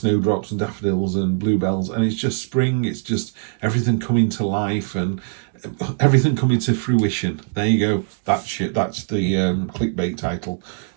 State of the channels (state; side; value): silent; left; 64 dB below the other